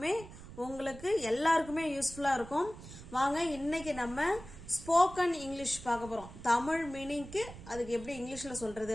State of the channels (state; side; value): noise; right; rumble, 15 dB below the sound